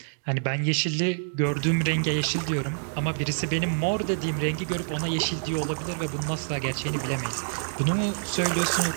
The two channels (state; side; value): silent; left; 60 dB below the other